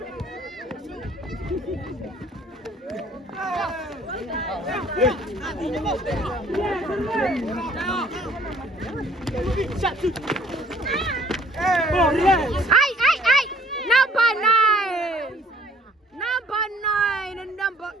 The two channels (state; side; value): normal; both; correlation 0.56